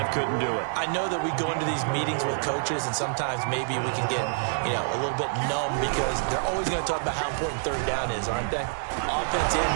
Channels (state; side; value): silent; left; digital silence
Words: couldn't do it. I know that we go into these meetings with coaches, and sometimes maybe we can get, a little bit numb because they're always going to talk about how important 3rd down is, aren't they? Offense and